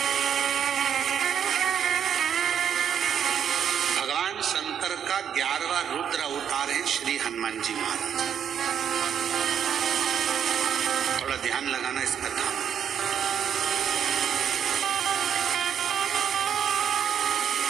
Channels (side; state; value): left; quieter; 8.5 dB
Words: भगवान शंकर का 11वां रुद्र अवतार है श्री हनुमान जी महाराज। थोड़ा ध्यान लगाना इस कथा में।